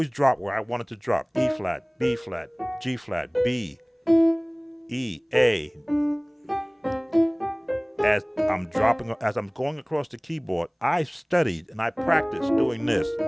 drop where I want it to drop. E flat, B flat, G flat, B, E, A. As I'm going across the keyboard, I studied and I practiced doing this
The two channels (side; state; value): both; identical; correlation 1.00